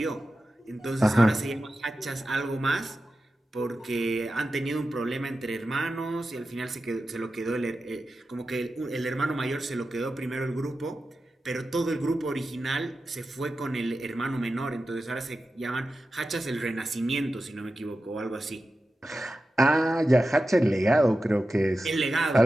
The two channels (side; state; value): both; normal; correlation 0.92